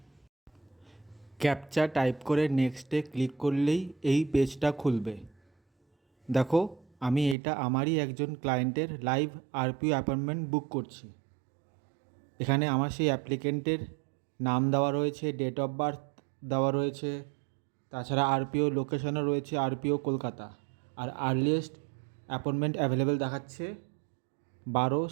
ক্যাপচা টাইপ করে নেক্সটে ক্লিক করলেই এই পেজটা খুলবে। দেখো, আমি এটা আমারই একজন ক্লায়েন্টের লাইভ আরপিও অ্যাপয়েন্টমেন্ট বুক করছি। এখানে আমার সেই অ্যাপ্লিকেন্টের নাম দেওয়া রয়েছে, ডেট অফ বার্থ দেওয়া রয়েছে, তাছাড়া আরপিও লোকেশনও রয়েছে, আরপিও কলকাতা। আর আর্লিয়েস্ট অ্যাপয়েন্টমেন্ট অ্যাভেলেবেল দেখাচ্ছে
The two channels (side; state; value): left; drops out; at 7.4 s